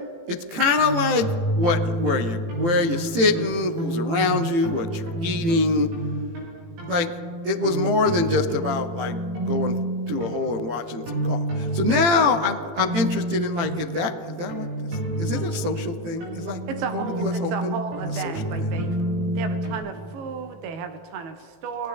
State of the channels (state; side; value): late; left; 18 ms